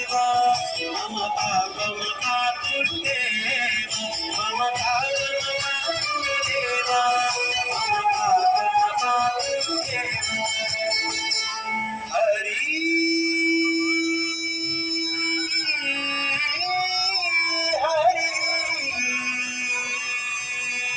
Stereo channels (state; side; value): identical; both; correlation 1.00